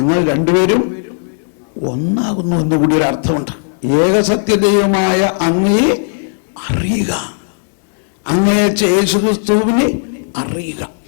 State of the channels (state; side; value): silent; right; digital silence